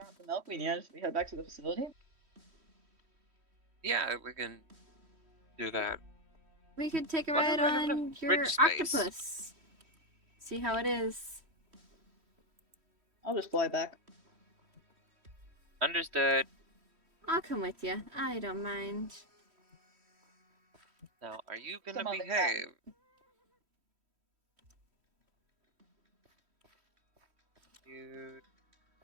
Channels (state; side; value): late; left; 3.1 ms